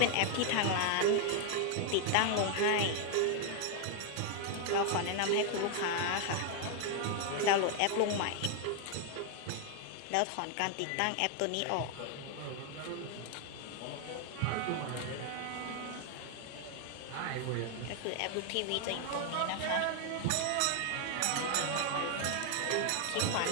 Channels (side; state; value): both; different; correlation 0.00